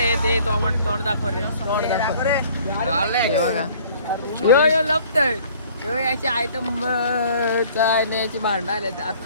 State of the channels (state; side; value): inverted; both; correlation -0.54